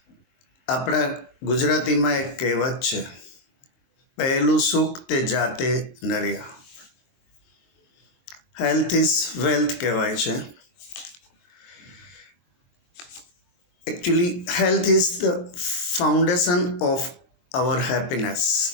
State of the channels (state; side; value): late; right; 23 ms